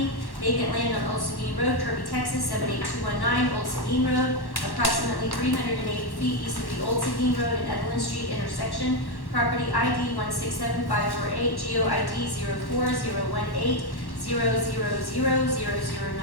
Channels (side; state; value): right; late; 1.1 ms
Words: vacant land on Old Seguin Road, Kirby, Texas 78219, Old Seguin Road, approximately 380 feet east of the Old Seguin Road and Evelyn Street intersection. Property ID 167-548, GEO ID